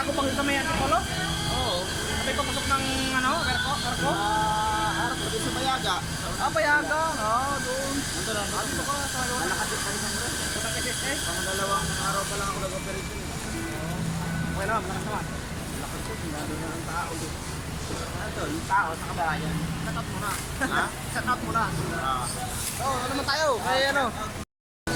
Kupang dito may Antipolo? Oo. May papasok ng ano, Karko? Harap ko din sa Bayaga. Ah, Payaga. Oh, doon. Nandun lang. Ano ka? Sa ano? Malakasit pa rin ang rin. Sa KSS? Pang dalawang araw pa lang ako nag-operate yun. Okay naman, malakas naman. Lakas ko, sinabi na ng tao. Ito, yung tao sa kabayan. Shut out muna. Ha? Shut out muna. Oh, ano naman tayo? Kaya ano?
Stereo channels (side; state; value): both; identical; correlation 1.00